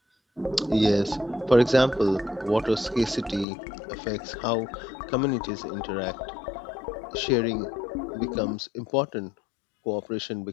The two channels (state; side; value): drops out; right; at 3.5 s